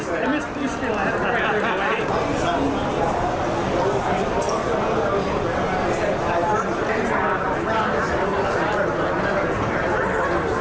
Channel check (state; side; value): identical; both; correlation 1.00